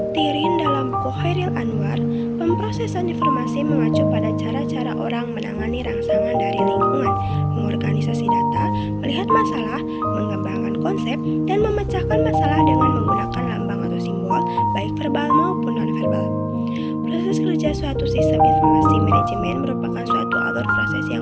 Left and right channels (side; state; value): both; identical; correlation 1.00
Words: Tirin dalam buku Khairil Anwar, pemrosesan informasi mengacu pada cara-cara orang menangani rangsangan dari lingkungan, mengorganisasi data, melihat masalah, mengembangkan konsep, dan memecahkan masalah dengan menggunakan lambang atau simbol, baik verbal maupun non-verbal. Proses kerja suatu sistem informasi manajemen merupakan suatu alur proses